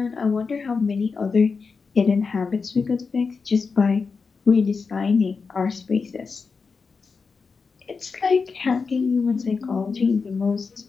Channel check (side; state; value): right; quieter; 4.9 dB